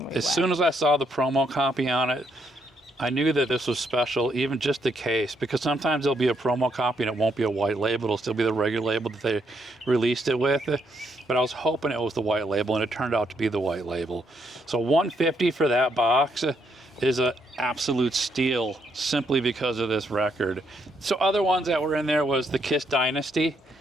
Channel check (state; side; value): normal; both; correlation 0.75